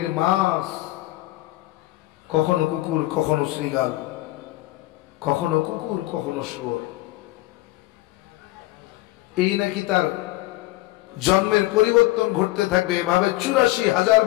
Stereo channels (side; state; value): right; quieter; 18.1 dB